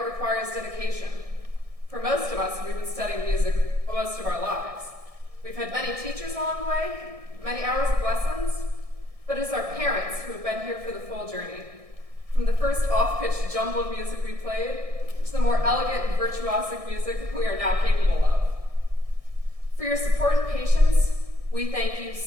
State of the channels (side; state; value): left; late; 1.6 ms